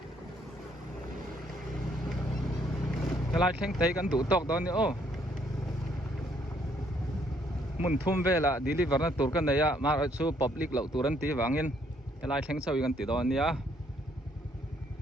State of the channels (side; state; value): both; normal; correlation 0.68